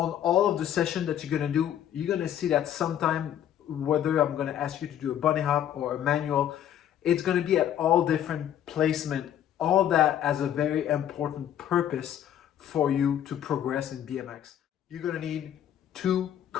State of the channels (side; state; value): right; quieter; 10.6 dB